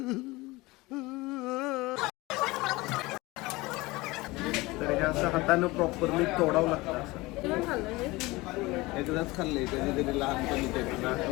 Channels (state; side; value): quieter; right; 21.7 dB